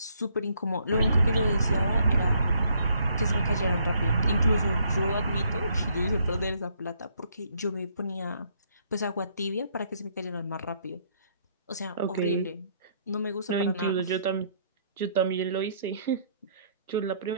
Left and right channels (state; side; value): inverted; both; correlation -0.68